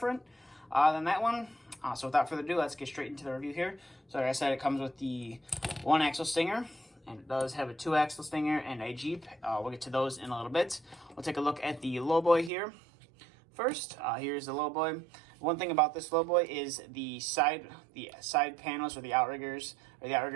than that one. So without further ado, let's get straight into the review here. So like I said, it comes with the one-axle Stinger, and it does have a two-axle Stinger and a Jeep. We'll get to those in a little bit. We'll take a look at the Lowboy here. First, here's the Lowboy. One thing about this Lowboy is the side panels, or the outriggers, or the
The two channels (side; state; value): left; drops out; at 12.5 s